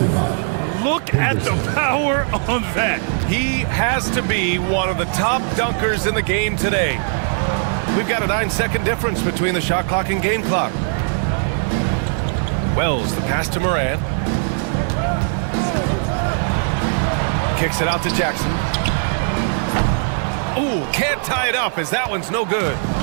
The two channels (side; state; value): left; silent; digital silence